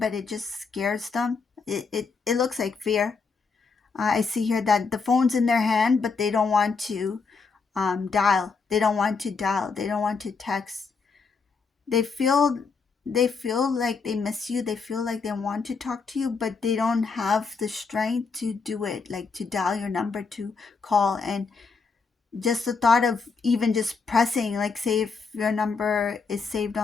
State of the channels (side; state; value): right; quieter; 4.9 dB